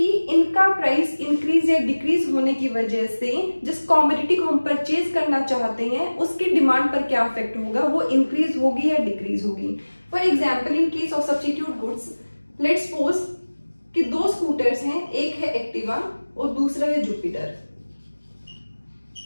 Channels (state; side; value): inverted; both; correlation -1.00